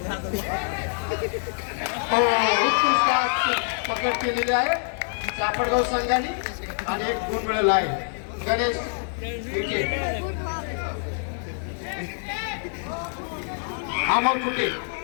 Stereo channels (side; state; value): right; silent; digital silence